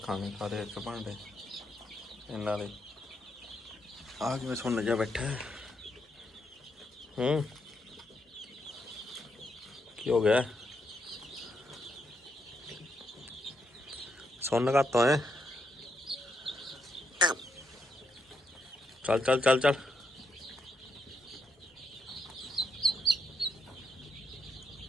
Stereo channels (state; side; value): normal; both; correlation 0.79